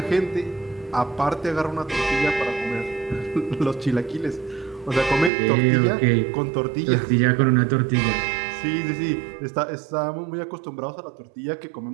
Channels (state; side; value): drops out; left; at 5.3 s